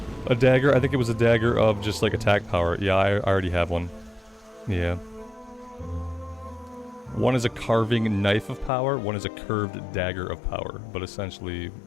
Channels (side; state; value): right; drops out; at 8.7 s